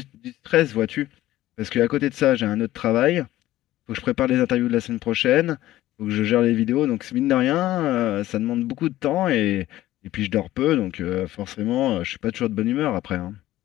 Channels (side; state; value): right; quieter; 15.2 dB